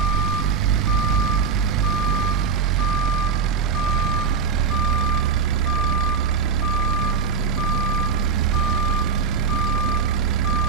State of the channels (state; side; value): quieter; left; 5.7 dB